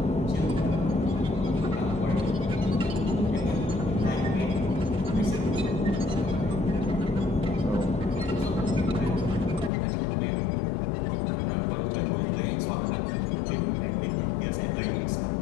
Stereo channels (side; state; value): right; drops out; at 9.7 s